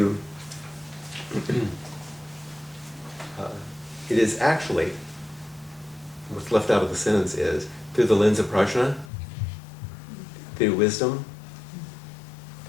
it is actually, what's left out of the sentence is, through the lens of prajna, through wisdom,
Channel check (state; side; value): drops out; right; at 9.1 s